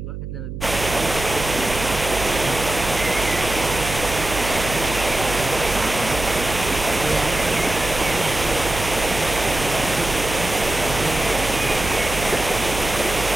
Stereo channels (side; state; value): right; noise; hum, 8 dB below the sound